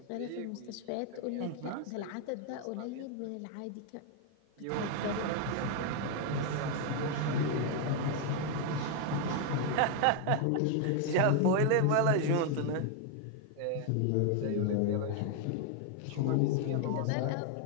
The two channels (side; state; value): both; different; correlation 0.01